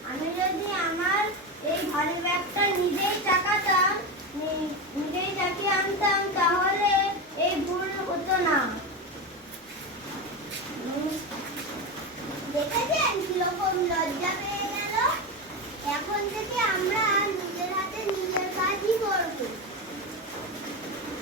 আমি যদি আমার এই ভারী ব্যাগটা নিজেই টাকাতাম, নিজেই চাকিয়ে আনতাম, তাহলে এই ভুল হতো না। দেখেছেন কিরকম লজ্জা পেয়ে গেল? এখন থেকে আমরা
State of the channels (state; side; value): normal; both; correlation 0.17